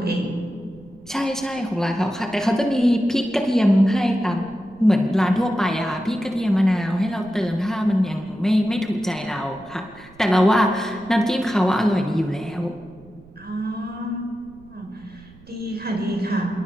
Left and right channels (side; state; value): right; noise; rumble, 24 dB below the sound